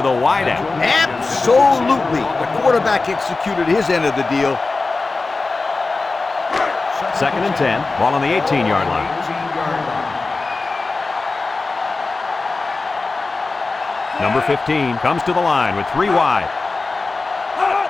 wideout. Absolutely. The quarterback executed his end of the deal. 2nd and 10. Ball on the 18-yard line. Number 15 comes to the line with 3 wide.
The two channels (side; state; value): right; quieter; 3.7 dB